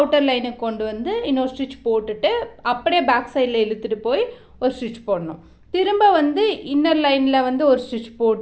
லைனுக்கு கொண்டு இன்னொரு ஸ்டிச் போட்டுட்டு அப்படியே பேக் சைடில் இழுத்துட்டு போய் ஒரு ஸ்டிச் போடணும். திரும்ப இன்னர் லைனில் ஒரு ஸ்டிச்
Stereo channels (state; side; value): identical; both; correlation 1.00